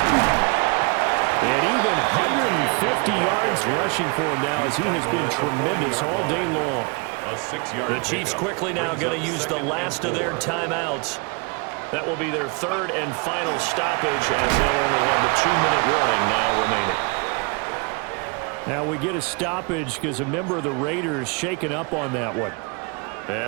And even 150 yards rushing for him now, as he has been tremendous all day long. The Chiefs quickly now going to use the last of their timeouts. That will be their 3rd and final stoppage, as they'll only have the 2-minute warning now remaining. Now we get a stoppage because a member of the Raiders shaken up on that one.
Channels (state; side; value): quieter; left; 31.3 dB